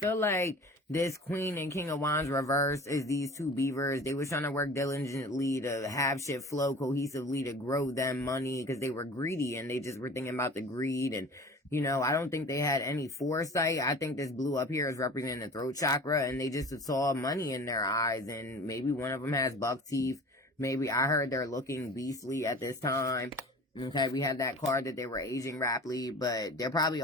like this Queen and King of Wands reverse is these two beavers. They was trying to work diligently to have shit flow cohesively to grow them money because they were greedy and they just were thinking about the greed. And, you know, I don't think they had any foresight. I think this blue up here is representing the throat chakra, and they just saw money in their eyes, and maybe one of them has buck teeth. Maybe I heard they're looking beastly at this time. Okay, we had that card that they were aging rapidly, but they probably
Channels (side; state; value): both; normal; correlation 0.40